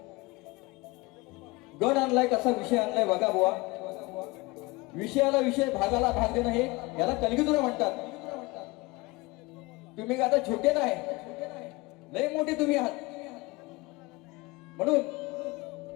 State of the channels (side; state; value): right; quieter; 23.6 dB